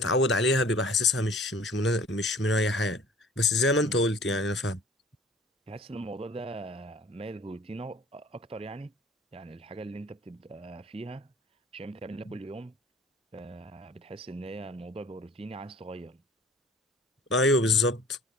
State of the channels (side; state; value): both; normal; correlation 0.49